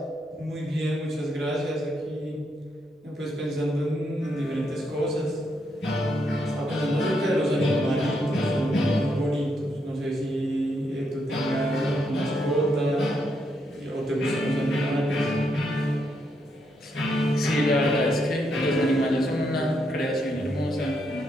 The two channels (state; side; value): normal; both; correlation 0.78